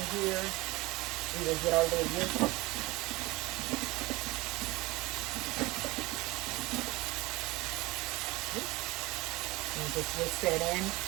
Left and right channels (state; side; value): quieter; left; 21.5 dB